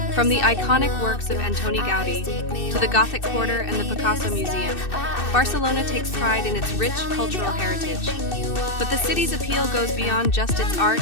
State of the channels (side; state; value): right; late; 2.6 ms